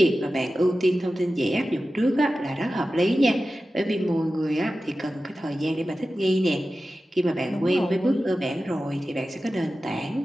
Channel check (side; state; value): both; normal; correlation 0.94